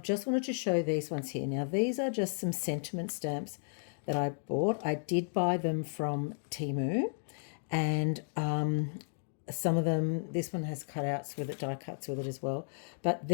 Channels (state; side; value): silent; right; digital silence